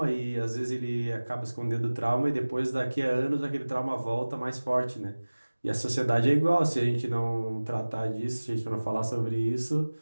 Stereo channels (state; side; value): inverted; both; correlation -1.00